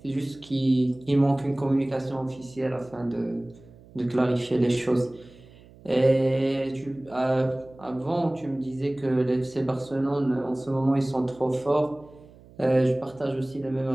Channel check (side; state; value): right; noise; hum, 23 dB below the sound